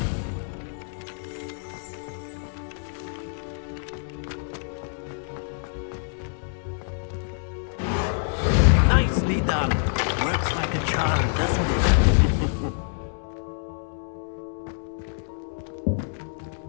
Nicely done. Works like a charm, doesn't it?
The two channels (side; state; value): right; silent; 61 dB below the other